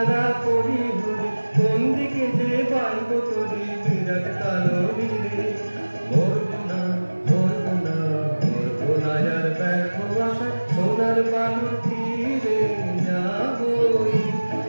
করি ঘুরি, কোন দিকে যে বাইব করি বিরাট কালো নীরে, মরবো না মরবো না মরবো না আর ব্যর্থ আশা সোনার বালুর তীরে, যাবই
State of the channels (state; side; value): inverted; both; correlation -1.00